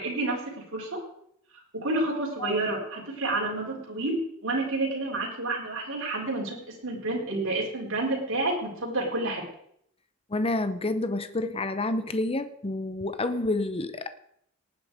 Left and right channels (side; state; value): both; normal; correlation 0.20